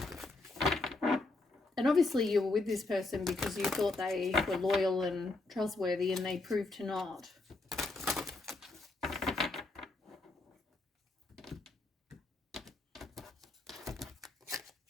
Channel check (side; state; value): right; quieter; 3.2 dB